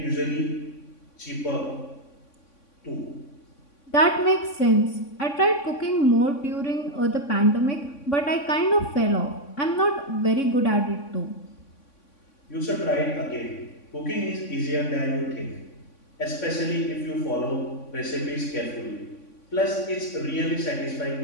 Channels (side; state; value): right; late; 3.6 ms